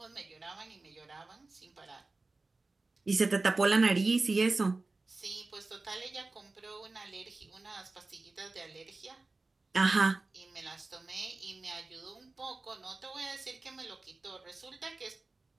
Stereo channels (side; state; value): left; quieter; 3.4 dB